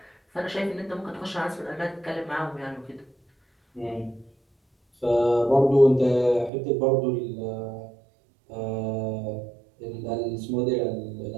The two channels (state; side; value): drops out; left; at 6.5 s